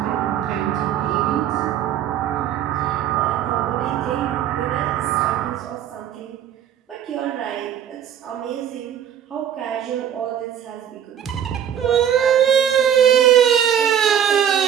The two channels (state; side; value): quieter; left; 9.5 dB